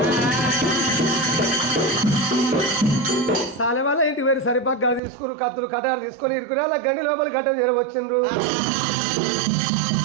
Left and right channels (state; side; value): drops out; left; at 5.0 s